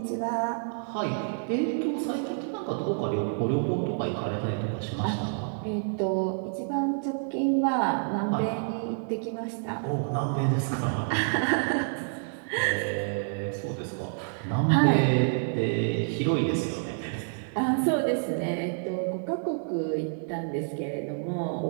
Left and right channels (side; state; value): left; silent; digital silence